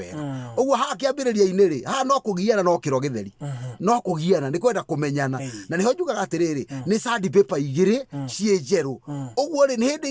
uguo hakiambiriria-ini ri ha no kugiana no kiro githeri no kugiana ni kwenda kumenyana na niho njugaga atiriri ni sandpaper igiri cie njeru uguo ri ni hindi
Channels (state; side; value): identical; both; correlation 1.00